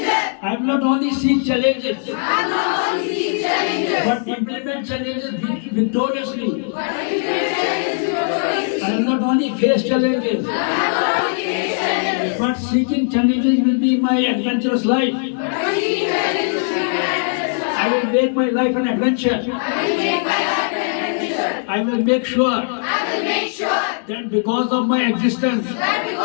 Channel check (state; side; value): silent; right; digital silence